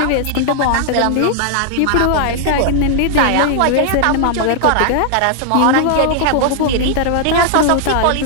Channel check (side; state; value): both; different; correlation 0.00